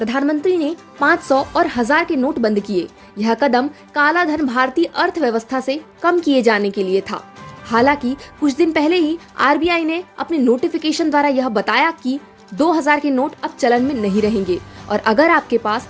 ने 500 और 1000 के नोट बंद किए। यह कदम काला धन भारतीय अर्थव्यवस्था से कम किए जाने के लिए था। हालांकि कुछ दिन पहले ही आरबीआई ने अपने नोटिफिकेशन द्वारा यह बताया कि 2000 के नोट अब चलन में नहीं रहेंगे और अगर आपके पास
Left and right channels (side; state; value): both; identical; correlation 1.00